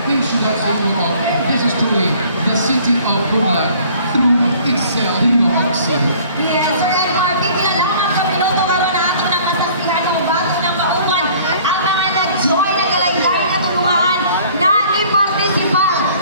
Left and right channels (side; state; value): both; inverted; correlation -0.53